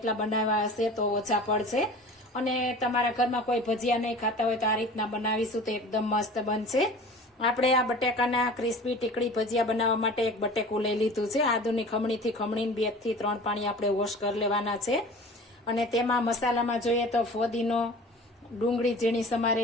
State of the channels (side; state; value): both; normal; correlation 0.41